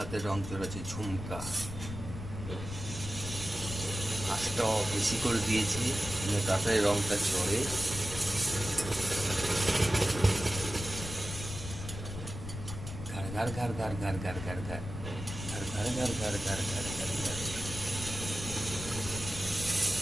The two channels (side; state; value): left; noise; rumble, 8 dB below the sound